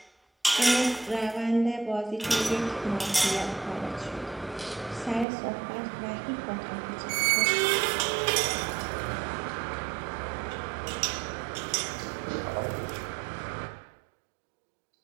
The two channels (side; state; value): left; drops out; at 5.2 s